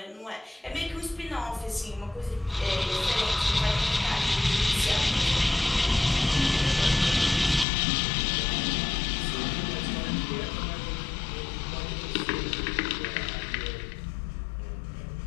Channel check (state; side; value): drops out; right; at 7.7 s